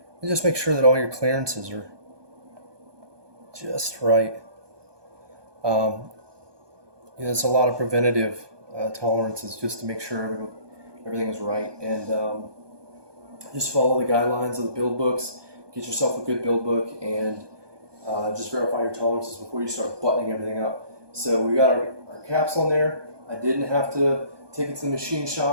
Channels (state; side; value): late; left; 1.2 ms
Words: and just make sure that all your clearances are just right. There's a lot of preventative tolerances just to make sure everything is right, and just follow the guidelines of the build books. Get yourself a good build book, and just verify your tolerances before you start buttoning everything up. So we got our caps on there. I didn't have to take it to the machine